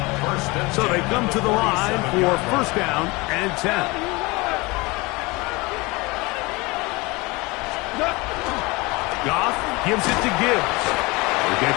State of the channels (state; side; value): quieter; right; 24.3 dB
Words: So they come to the line for first down and 10. Goff gives it to Gibbs. We get